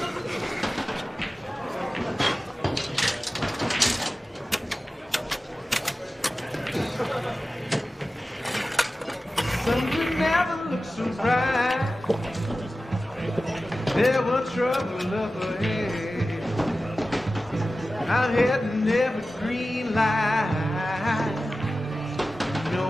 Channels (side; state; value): both; normal; correlation 0.95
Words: Something never looks so bright. There was trouble up ahead. I'm heading every green light. You